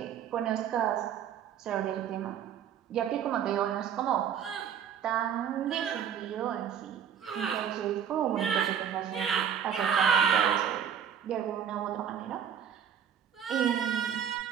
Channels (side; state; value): left; quieter; 8.5 dB